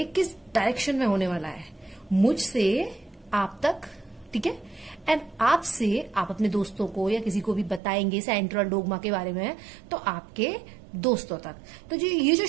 किस डायरेक्शन में होने वाला है, मुझसे आप तक, ठीक है। एंड आपसे आप अपने दोस्तों को या किसी को भी बताएंगे सेंट्रल डोग्मा के बारे में, तो आपके दोस्तों तक। तो जो ये जो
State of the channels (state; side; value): drops out; left; at 7.8 s